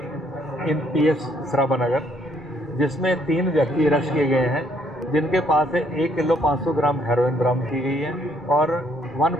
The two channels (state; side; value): normal; both; correlation 0.67